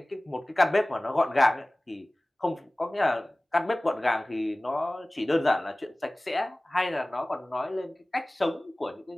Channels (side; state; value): both; normal; correlation 0.98